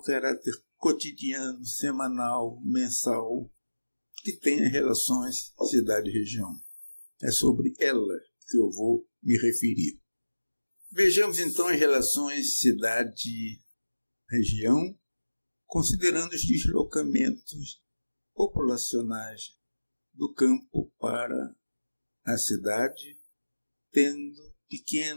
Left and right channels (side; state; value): both; inverted; correlation -1.00